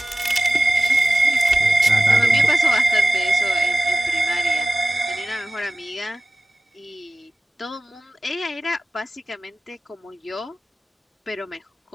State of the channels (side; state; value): both; normal; correlation 0.95